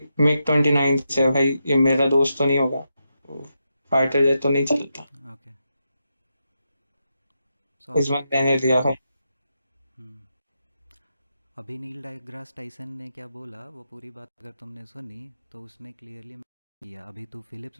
मिग 29 से है भाई. ये मेरा दोस्त तो नहीं होगा, फाइटर जेट तो नहीं चलता. ओके. इस बार मैंने लिया भाई. अभी नील डेग्रास टाइसन ने क्या बोला वो पूरी बात अगर तुमने सुनी तो उसने क्लियरली किया. अभी तू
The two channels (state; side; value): inverted; both; correlation -0.85